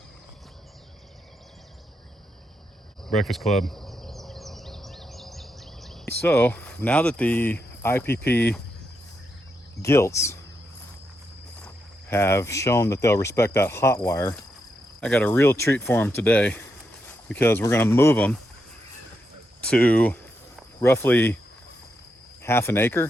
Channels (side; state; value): both; normal; correlation 0.83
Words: Breakfast Club. So now that the IPP gilts have shown that they'll respect that hot wire, I got a real treat for them today, because we're going to move them to roughly half an